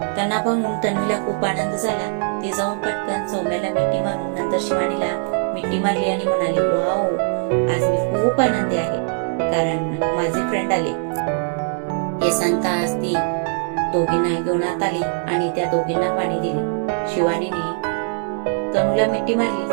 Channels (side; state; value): left; silent; 59 dB below the other